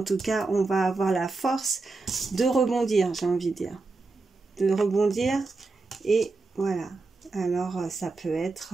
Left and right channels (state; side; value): quieter; left; 3.7 dB